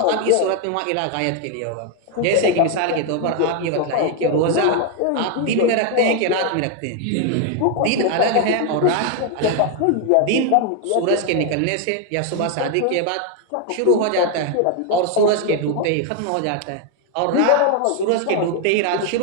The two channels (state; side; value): different; both; correlation 0.01